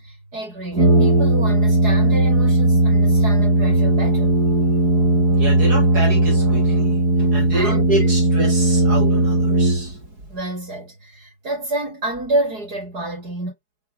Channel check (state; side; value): late; left; 4.8 ms